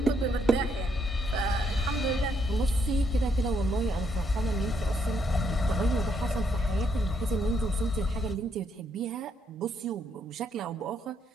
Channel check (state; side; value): normal; both; correlation 0.74